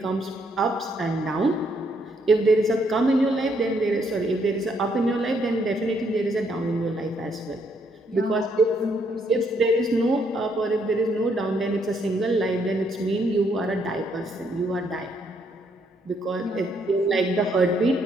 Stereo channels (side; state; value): both; normal; correlation 0.72